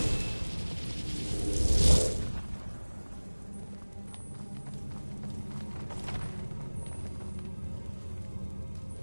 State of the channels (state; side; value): inverted; both; correlation -1.00